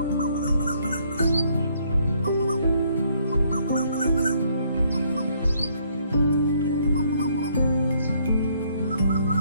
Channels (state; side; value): inverted; both; correlation -0.67